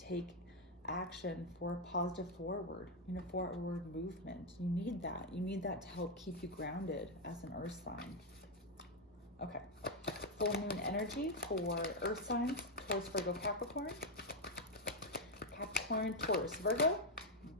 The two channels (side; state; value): both; normal; correlation 0.02